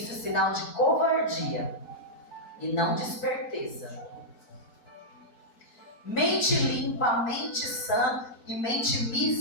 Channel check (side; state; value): right; late; 4.5 ms